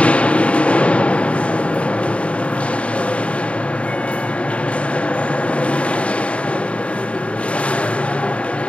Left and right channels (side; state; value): right; late; 0.062 ms